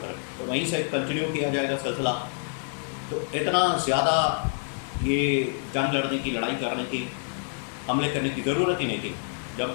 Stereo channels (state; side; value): silent; right; 60 dB below the other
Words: تو وہیں سے کنٹینیو کیا جائے گا سلسلہ۔ تو اتنا زیادہ یہ جنگ لڑنے کی، لڑائی کرنے کی، حملے کرنے کی ضرورت ہی نہیں تھی۔